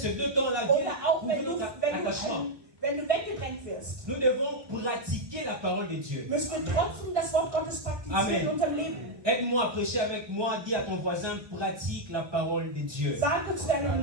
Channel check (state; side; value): late; left; 1.4 ms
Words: deux temps-là viennent oder auch prouver wenn notre attachement. wenn du weggedrängt wirst, nous devons pratiquer la parole de Dieu. müssen wir trotzdem das Wort Gottes praktizieren Amen. in unserem Leben. Aide-moi à prêcher avec moi, dis à ton voisin, pratique la parole de Dieu. Sage zu deinem